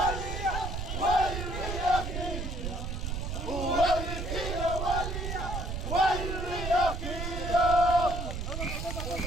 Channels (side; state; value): right; noise; rumble, 4 dB below the sound